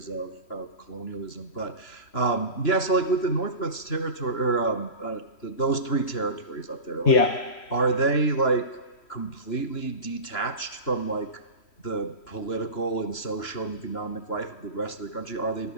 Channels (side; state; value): right; late; 3.1 ms